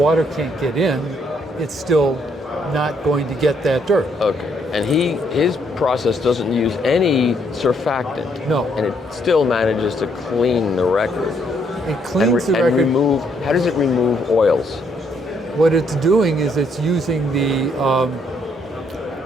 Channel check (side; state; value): both; normal; correlation 0.71